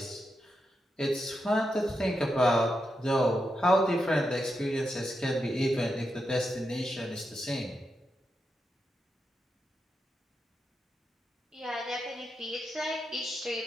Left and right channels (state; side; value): normal; both; correlation 0.86